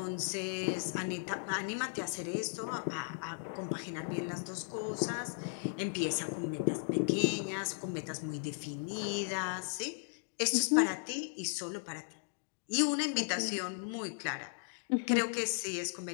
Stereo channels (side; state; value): right; silent; digital silence